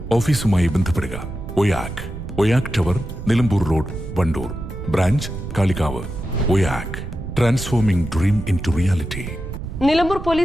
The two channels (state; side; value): noise; right; rumble, 8 dB below the sound